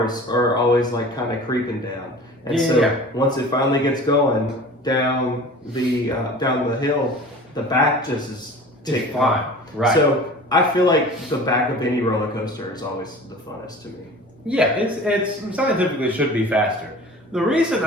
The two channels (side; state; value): both; normal; correlation 0.41